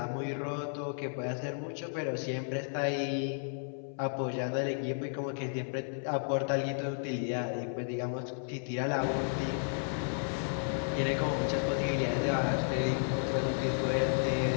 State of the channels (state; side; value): silent; right; 56 dB below the other